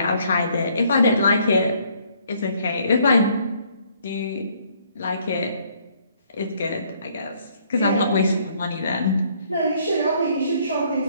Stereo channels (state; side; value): inverted; both; correlation -0.65